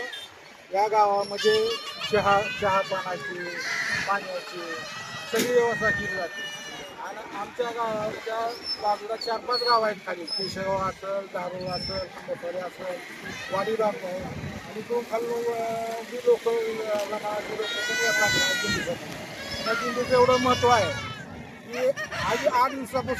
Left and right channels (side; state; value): both; identical; correlation 1.00